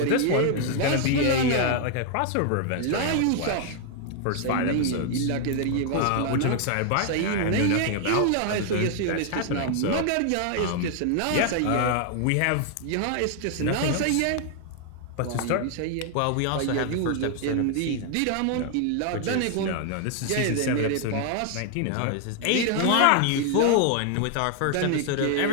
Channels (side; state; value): both; different; correlation 0.00